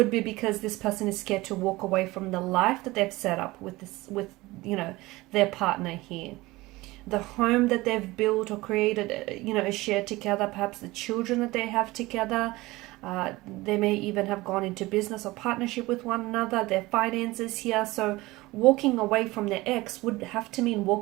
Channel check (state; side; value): quieter; left; 20.2 dB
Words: be because this person is scared to walk away from the life that they've set up with their partner here. The home that they've built or created, shared together, perhaps the children that they have together. They may even have gone into business or partnership with one another, their finances here. So walking away from their ex would have to mean